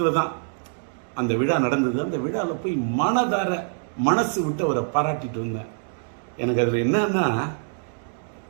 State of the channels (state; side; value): silent; left; 62 dB below the other